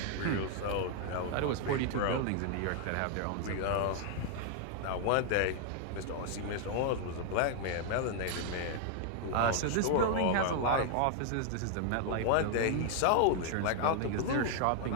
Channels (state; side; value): different; both; correlation 0.00